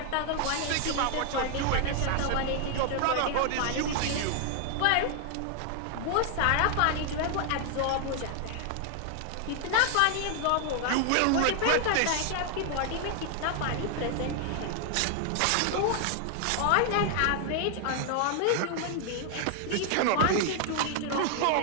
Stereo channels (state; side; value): different; both; correlation 0.00